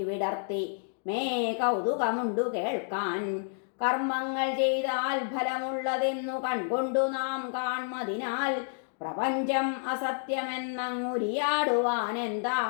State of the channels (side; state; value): right; silent; digital silence